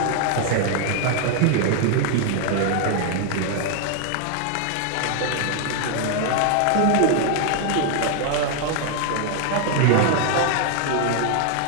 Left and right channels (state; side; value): different; both; correlation 0.00